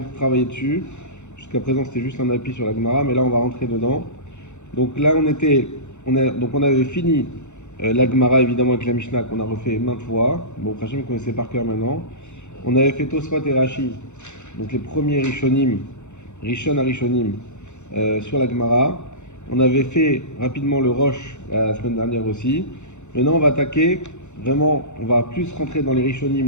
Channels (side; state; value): right; late; 0.83 ms